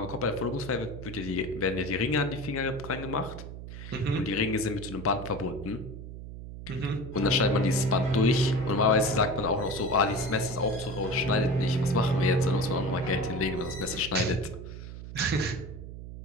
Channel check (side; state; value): right; noise; hum, 11 dB below the sound